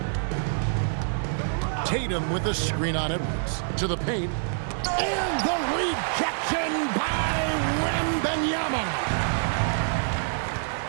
Tatum with the screen on Edwards. To the paint. And the rejection by Wembanyama.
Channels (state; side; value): silent; left; digital silence